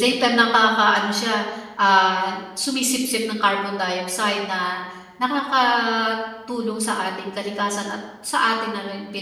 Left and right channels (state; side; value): identical; both; correlation 1.00